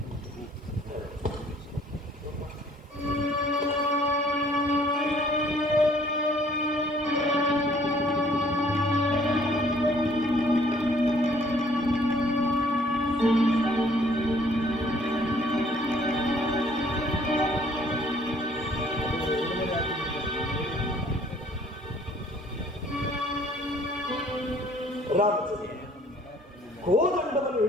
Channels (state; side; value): normal; both; correlation 0.59